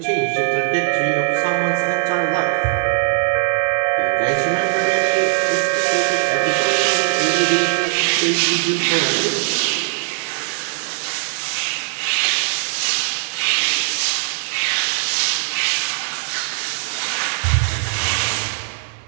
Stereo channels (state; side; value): silent; left; 62 dB below the other